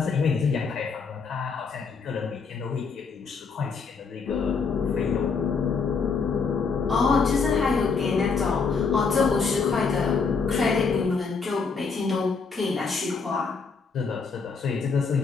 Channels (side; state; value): right; quieter; 5.1 dB